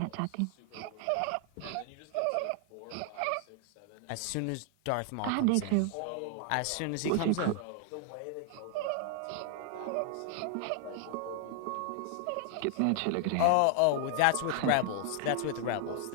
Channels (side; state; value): both; different; correlation 0.00